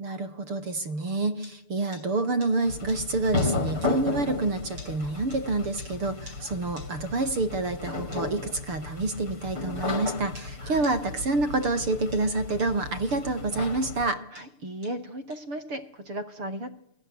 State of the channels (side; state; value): left; late; 6.8 ms